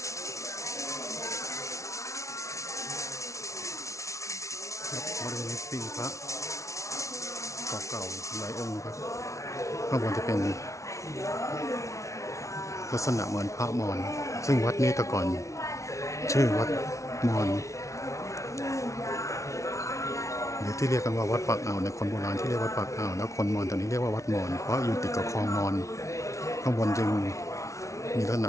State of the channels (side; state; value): right; late; 0.14 ms